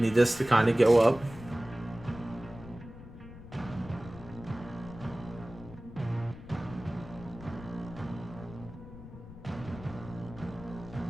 this to kind of go up.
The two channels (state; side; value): noise; left; rumble, 15 dB below the sound